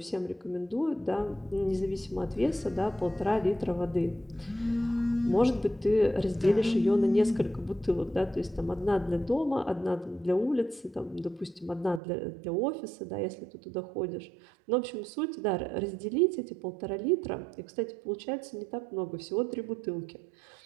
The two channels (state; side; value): drops out; left; at 12.0 s